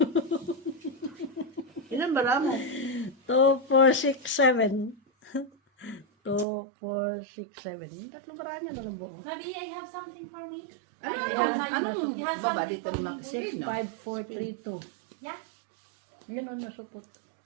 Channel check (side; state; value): left; drops out; at 6.5 s